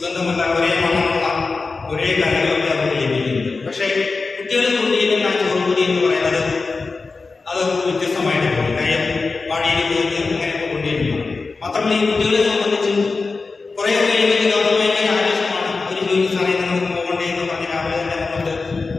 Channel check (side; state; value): right; quieter; 4.1 dB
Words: ഒരേ മണമുള്ള, ഒരേ കറികളൊക്കെ അവർക്ക് ലഭിക്കുന്നത്. പക്ഷേ കുട്ടികൾ കൊണ്ടുവരുന്ന ആ ചോറുകൂടി എന്ന് പറയുന്നത് അത് വ്യത്യസ്തമായിട്ട് പോകും. കാര്യം വാടിയിൽ പോയിട്ട് അങ്ങനെയൊക്കെ കൊണ്ടുവരുന്നു. മാത്രമല്ല ഈ കുട്ടികളെ സംബന്ധിച്ച് കുറേയൊക്കെ ഭയങ്കര ആവശ്യമാണ്. ഒരു ജോലി സമയത്ത് നമുക്ക് പോകണ്ടേ എന്ന് പറഞ്ഞ് രാവിലെ തന്നെ നമുക്ക്